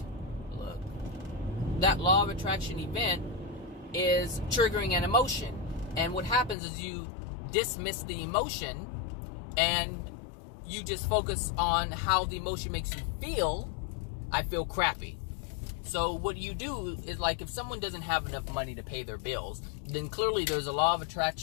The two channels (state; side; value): drops out; right; at 6.6 s